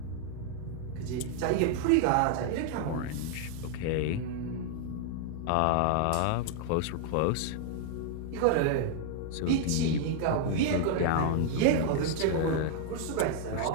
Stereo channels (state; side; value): different; both; correlation 0.00